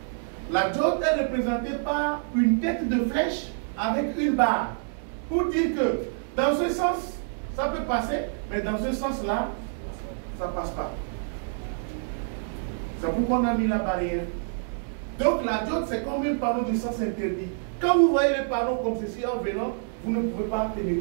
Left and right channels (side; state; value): left; silent; digital silence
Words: La diode est représentée par une tête de flèche avec une barre, pour dire que dans ce sens, ça peut passer, mais dans ce sens-là, ça ne passe pas. C'est pourquoi on a mis la barrière. Donc la diode, c'est comme un panneau de sens interdit. Quand vous voyez les panneaux comme ceci en venant, vous ne pouvez pas